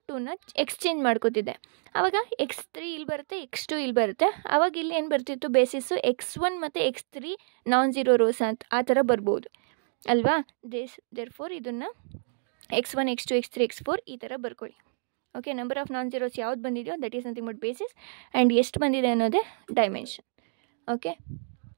ಎಕ್ಸ್ಚೇಂಜ್ ಮಾಡ್ಕೋತಿದ್ದೆ. ಆವಾಗ x3 ಇಲ್ಲಿ ಬರುತ್ತೆ, x2 ಇಲ್ಲಿ ಬರುತ್ತೆ. ಆವಾಗ ಇಲ್ಲಿ ಏನು ಬರ್ತಿತ್ತು, ಬೇಸಿಸ್ಸು x1 ಮತ್ತು x3 ನಾನ್ ಝೀರೋ ರೋಸ್ ಅಂತ ಆ ಥರ ಬರ್ಬೋದು ಅಲ್ವಾ. ದೇರ್ಫೋರ್ ಇದನ್ನು x1 x2 x3 x4 ಈ ಥರ ಬರ್ಕೊಳ್ಳಿ. Okay, number of non zeros ಯಾವ್ದು ಬಂದಿದೆಯೋ that is nothing but basis, and ಎಷ್ಟು ಬಂದಿದೆ ಅನ್ನೋದೇ ಡೈಮೆನ್ಷನ್. Okay,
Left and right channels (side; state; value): left; silent; digital silence